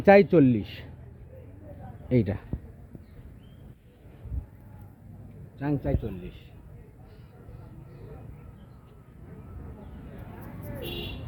40। এইটা চাংচাই 40।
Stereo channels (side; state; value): both; identical; correlation 1.00